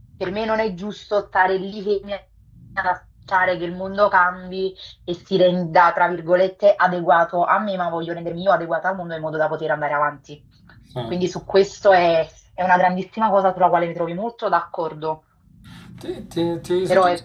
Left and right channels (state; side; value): identical; both; correlation 1.00